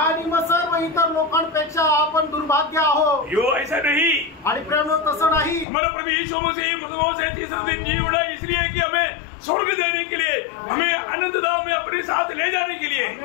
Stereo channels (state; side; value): drops out; right; at 5.7 s